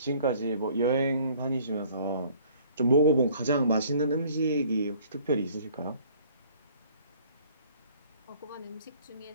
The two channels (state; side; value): inverted; both; correlation -0.55